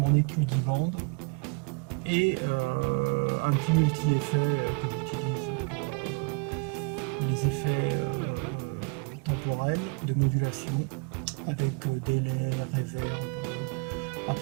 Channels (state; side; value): quieter; left; 33.0 dB